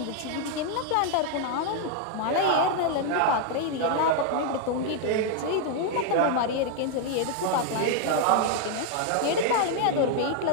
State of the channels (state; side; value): different; both; correlation 0.00